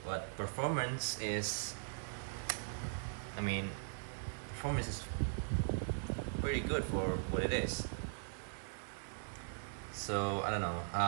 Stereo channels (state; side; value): silent; left; digital silence